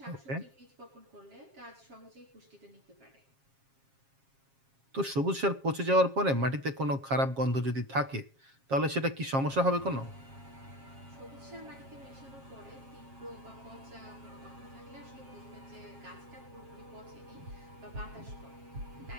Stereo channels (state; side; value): late; left; 7.4 ms